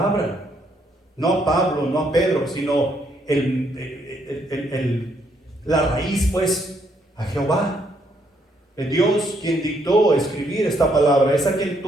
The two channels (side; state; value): both; normal; correlation 0.72